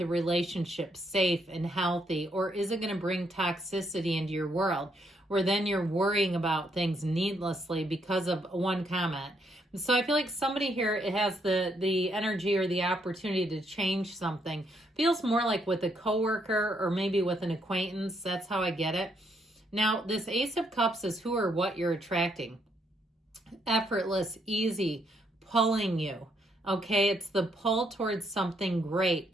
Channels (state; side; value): normal; both; correlation 0.74